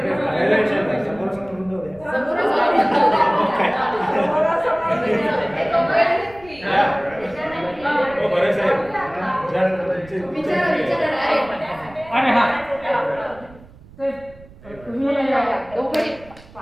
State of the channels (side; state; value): right; noise; rumble, 22 dB below the sound